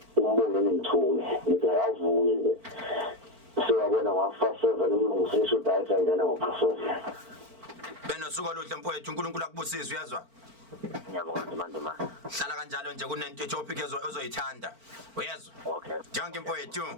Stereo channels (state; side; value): late; left; 4.4 ms